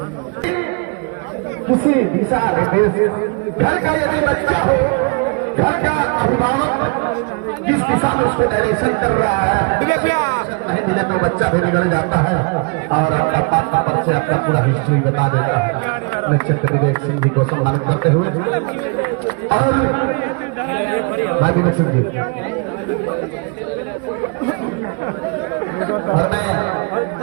किसी दिशा निर्देश घर का यदि बच्चा हो, घर का अभिभावक किस दिशा में उसको डायरेक्शन कर रहा है, नहीं मिले तो बच्चा भी बिगड़ जाता है और आपका पापा पर से अपना पूरा हिस्ट्री बता देता है। निश्चित विवेक सिंह जी को सम्मानित करते हुए और भाई विवेक सिंह जी और मैं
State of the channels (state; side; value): quieter; left; 33.2 dB